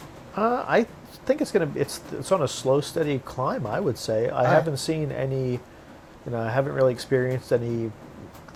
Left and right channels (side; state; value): both; identical; correlation 1.00